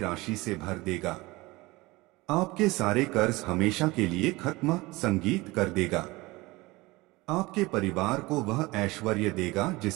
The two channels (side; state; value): left; quieter; 21.6 dB